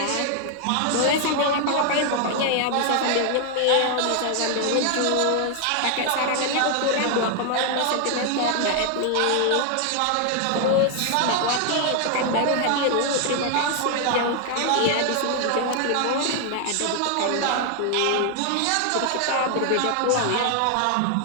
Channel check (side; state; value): both; different; correlation 0.00